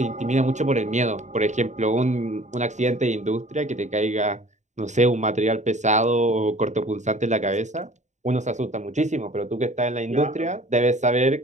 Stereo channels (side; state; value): left; late; 0.34 ms